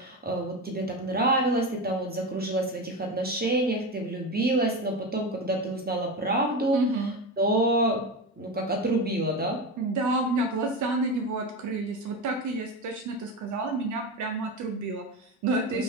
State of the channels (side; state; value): both; normal; correlation 0.21